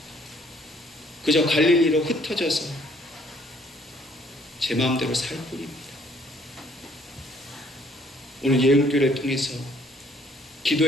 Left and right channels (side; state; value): both; normal; correlation 0.62